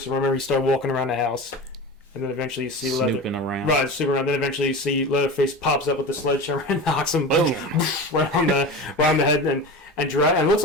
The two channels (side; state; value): both; normal; correlation 0.30